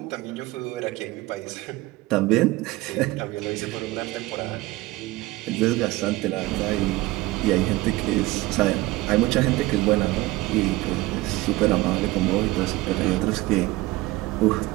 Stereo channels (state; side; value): quieter; left; 19.4 dB